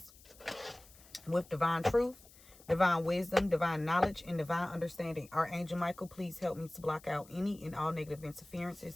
with divine truth, divine wisdom, divine knowledge, and divine understanding. Archangel Michael, please help me to block out any and all negative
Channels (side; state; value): left; noise; hiss, 23 dB below the sound